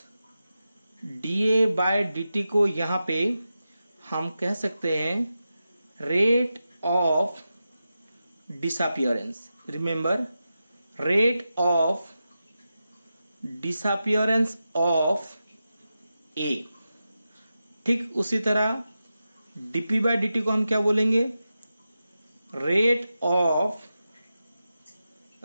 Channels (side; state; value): both; inverted; correlation -0.91